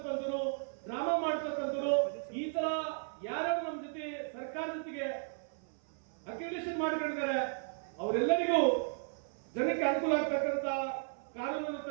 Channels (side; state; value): left; silent; 54 dB below the other